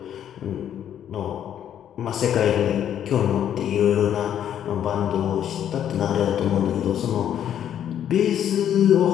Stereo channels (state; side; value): quieter; right; 10.0 dB